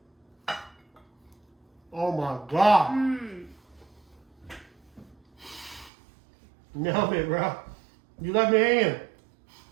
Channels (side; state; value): left; drops out; at 5.9 s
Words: it. Oh my God. Nailed it, bro. You left me hanging.